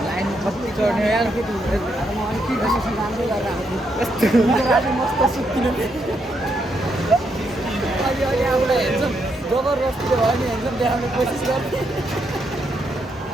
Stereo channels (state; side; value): normal; both; correlation 0.78